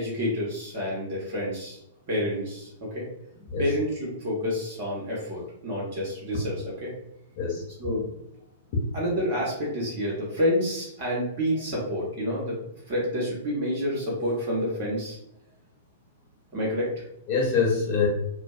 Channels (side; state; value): both; inverted; correlation -0.31